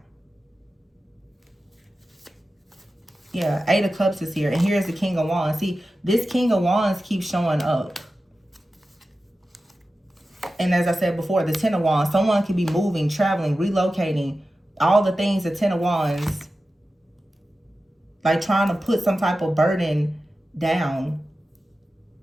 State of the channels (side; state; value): both; normal; correlation 0.94